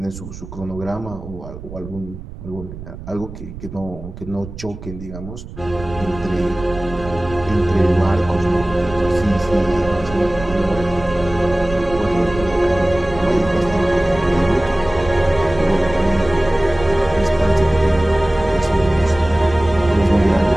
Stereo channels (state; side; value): noise; right; rumble, 13 dB below the sound